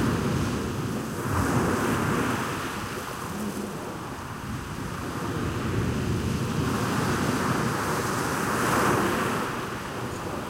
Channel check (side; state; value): both; identical; correlation 1.00